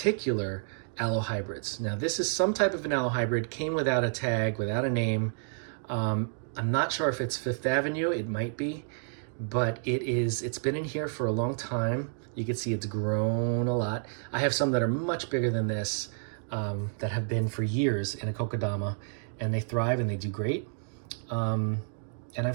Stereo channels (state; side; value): silent; left; 58 dB below the other